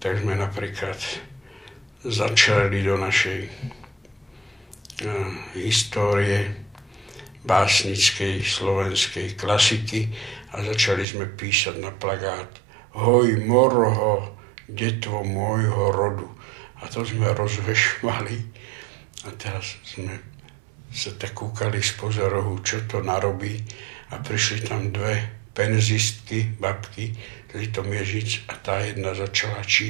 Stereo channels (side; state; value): left; drops out; at 11.1 s